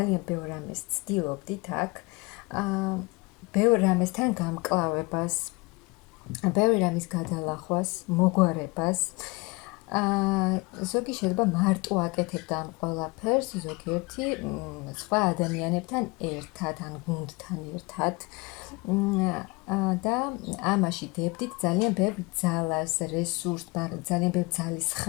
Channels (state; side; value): quieter; right; 25.7 dB